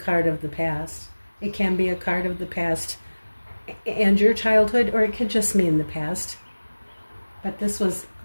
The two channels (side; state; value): both; inverted; correlation -1.00